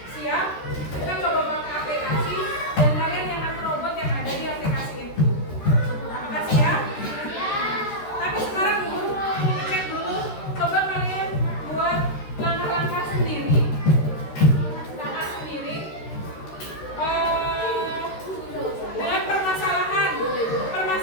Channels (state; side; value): late; right; 13 ms